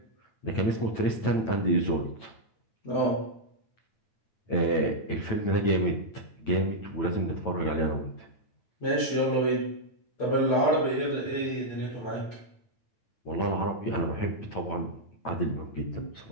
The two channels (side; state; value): right; late; 9.0 ms